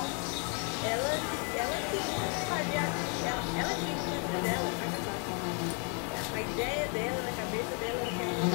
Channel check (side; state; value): right; quieter; 37.2 dB